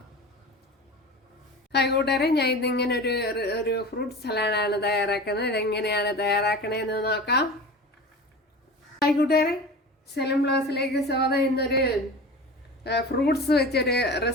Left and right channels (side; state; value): both; normal; correlation 0.34